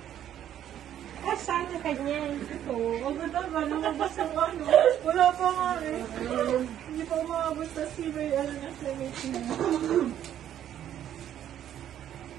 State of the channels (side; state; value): left; quieter; 10.8 dB